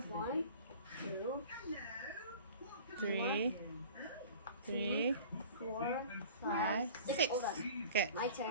2, Three. Three. 4, 5, 6. 6. Hold on. Okay. My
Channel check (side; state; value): both; inverted; correlation -0.43